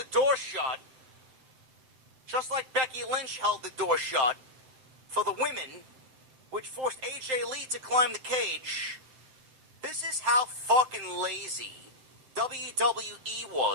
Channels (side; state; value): left; late; 7.8 ms